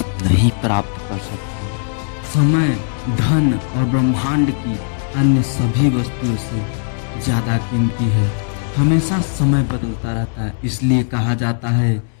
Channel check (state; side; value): silent; right; 67 dB below the other